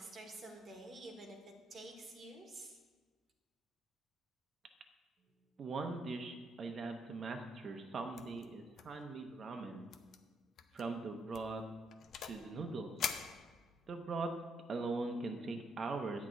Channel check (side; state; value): both; normal; correlation 0.75